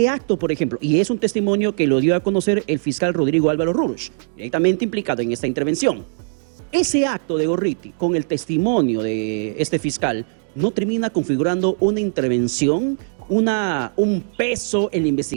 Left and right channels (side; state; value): left; silent; digital silence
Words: acto, por ejemplo, y es un testimonio que lo dio a conocer el fiscal Rodrigo Álvaro Rurush, directamente implicado en esta intervención. Ese acto de Gorriti, con el testimonio de este fiscal, no termina configurando una intervención, un peso en la